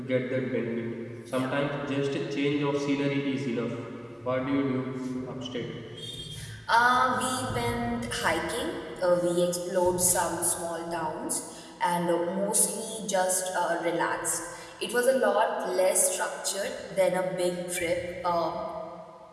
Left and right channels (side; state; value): both; identical; correlation 1.00